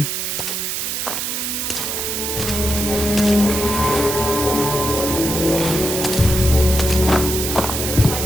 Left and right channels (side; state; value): right; noise; hiss, 2 dB below the sound